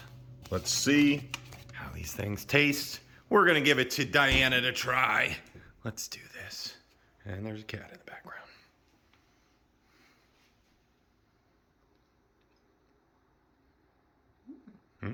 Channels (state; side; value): identical; both; correlation 1.00